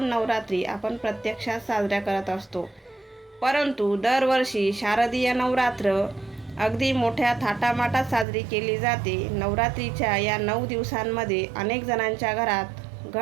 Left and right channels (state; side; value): drops out; left; at 8.2 s